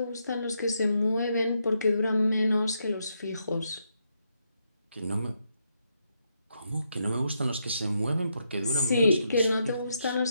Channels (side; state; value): both; inverted; correlation -0.80